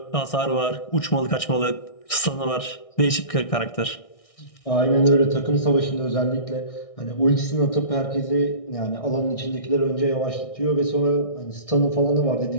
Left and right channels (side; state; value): right; late; 1.6 ms